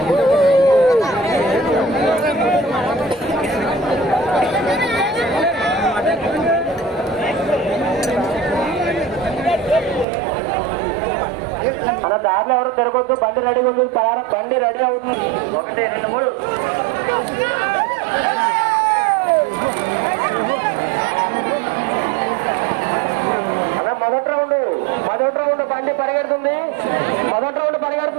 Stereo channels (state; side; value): drops out; left; at 10.1 s